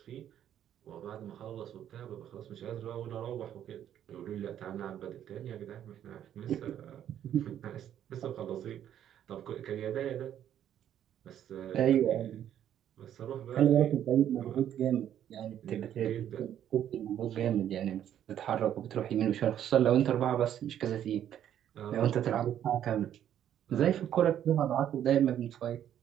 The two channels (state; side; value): quieter; left; 10.5 dB